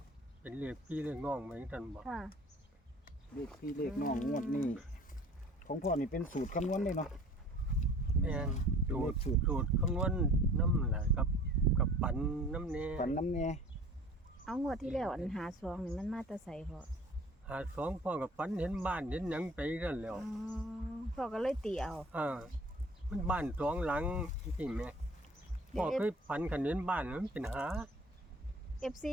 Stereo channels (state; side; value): normal; both; correlation 0.48